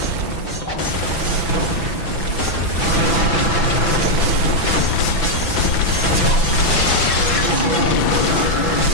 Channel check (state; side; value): late; right; 6.0 ms